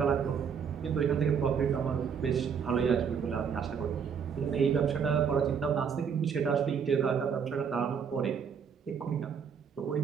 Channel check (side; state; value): left; quieter; 6.9 dB